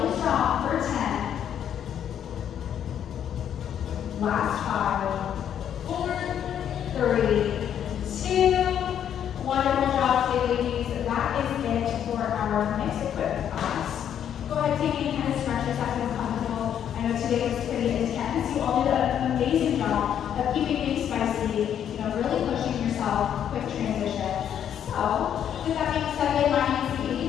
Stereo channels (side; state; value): right; quieter; 9.4 dB